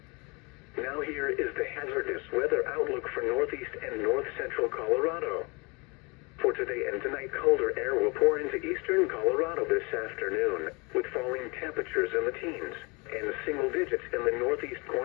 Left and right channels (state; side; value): quieter; right; 28.7 dB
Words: Now here is the hazardous weather outlook for northeast and north central Colorado. For today and tonight, colder air will pour into eastern Colorado this afternoon, with falling temperatures in the teens and single digits in the northeast